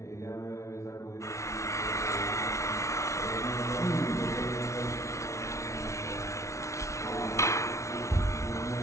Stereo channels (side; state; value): right; late; 0.14 ms